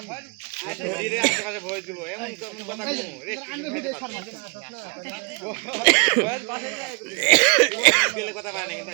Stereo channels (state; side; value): quieter; left; 34.0 dB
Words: ধীরে আশেপাশে ভয়েস দিব এমন কেমন কথা কই রেস্ট্রিকশন ভয়েস পাশে যায় দিলে কথা পায় না কিন্তু